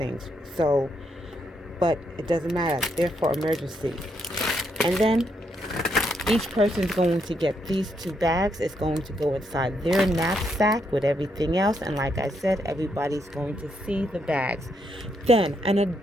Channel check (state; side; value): normal; both; correlation 0.77